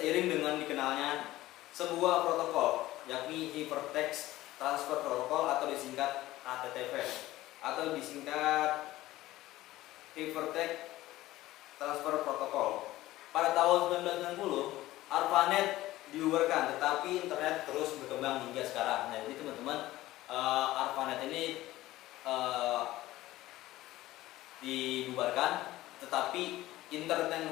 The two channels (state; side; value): quieter; right; 16.5 dB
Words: dengan dikenalnya sebuah protokol, yakni Hypertext Transfer Protocol atau disingkat HTTP atau disingkat Hypertext Transfer Protocol. Pada tahun 1990 ARPANET dibubarkan, tetapi internet terus berkembang hingga sekarang. Nah, jadi teman-teman, ARPANET ini dibubarkan, tetapi internet